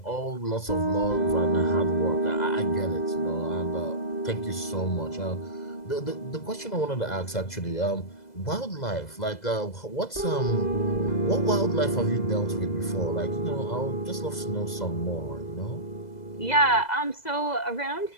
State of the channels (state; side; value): late; right; 2.0 ms